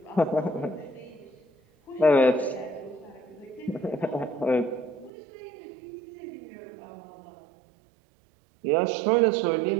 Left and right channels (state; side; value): drops out; left; at 5.1 s